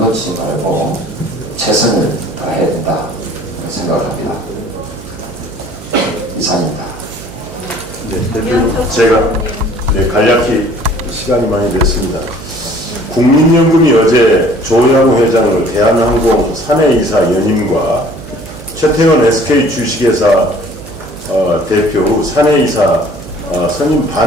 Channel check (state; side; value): noise; right; hum, 15 dB below the sound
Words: 말고 최선을 다해야 된다 생각을 합니다. 이상입니다. 네, 대표 제가 간략히 시간이 많이 됐습니다. 국민연금이 어제 조양호 회장을 대한항공 사내이사 연임과 최태원 SK 주식회사 대표 후 사내이사 선임